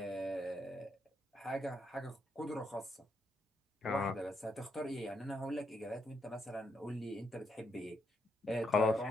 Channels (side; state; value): both; normal; correlation 0.79